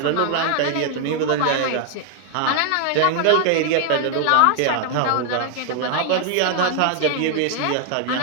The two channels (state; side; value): different; both; correlation 0.00